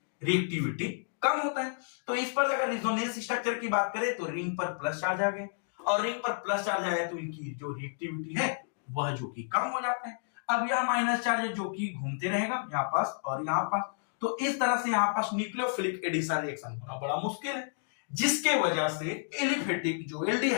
रिएक्टिविटी कम होता है। तो इस पर अगर रेजोनेंस स्ट्रक्चर की बात करें तो रिंग पर प्लस चार्ज आ गए, और रिंग पर प्लस चार्ज आया तो इनकी जो रिएक्टिविटी है वह जो कि कम हो जाता है। अब यह माइनस चार्ज जो कि घूमते रहेगा यहाँ पास और यहाँ पास, तो इस तरह से यहाँ पास न्यूक्लियोफिलिक एडिशन रिएक्शन होना बड़ा मुश्किल है, जिसके वजह से एलिफेटिक जो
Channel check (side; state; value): right; silent; digital silence